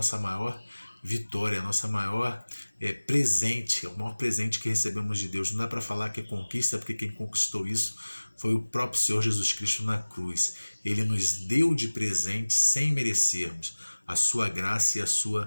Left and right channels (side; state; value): both; inverted; correlation -1.00